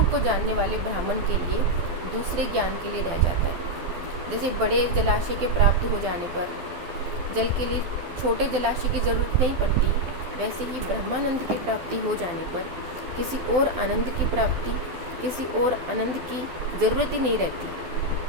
को जानने वाले ब्राह्मण के लिए दूसरे ज्ञान के लिए रह जाता है। जैसे बड़े जलाशय के प्राप्त हो जाने पर जल के लिए छोटे जलाशय की जरूरत नहीं पड़ती, वैसे ही ब्रह्मानंद की प्राप्ति हो जाने पर किसी और आनंद की प्राप्ति, किसी और आनंद की जरूरत ही नहीं रहती।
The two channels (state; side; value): late; left; 12 ms